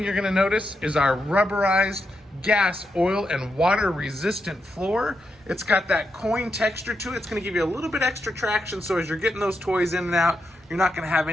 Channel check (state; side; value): normal; both; correlation 0.84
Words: you're gonna notice is our rubberized gas, oil, and water resistant floor. It's got that coin texture to it. It's gonna give you a little bit extra traction, so as you're getting those toys in and out, you're not gonna have